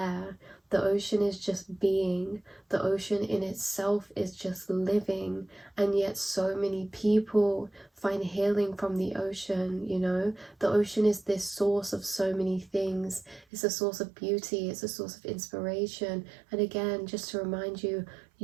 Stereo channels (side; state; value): left; drops out; at 13.5 s